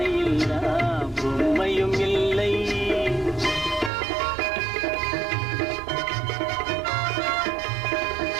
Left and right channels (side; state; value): left; drops out; at 3.9 s